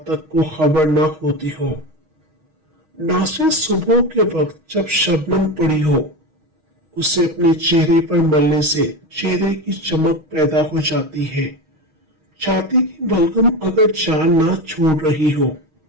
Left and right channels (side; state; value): left; late; 6.4 ms